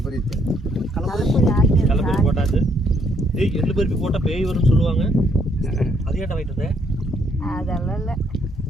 கலப்பரி போட்டாச்சு. எள்ளு பருப்பி போட்டால் பேய் வரும்னு சொல்லுவாங்க. அது ஏன்டா வாங்கிட்டு வந்தேன்? அதெல்லாம் இல்லை.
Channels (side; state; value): both; normal; correlation 0.70